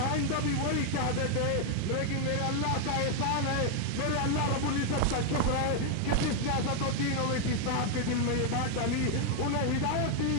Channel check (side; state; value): both; different; correlation 0.00